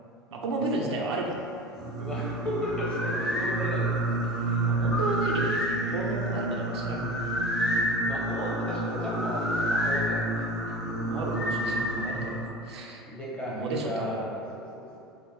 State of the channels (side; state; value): both; normal; correlation 0.34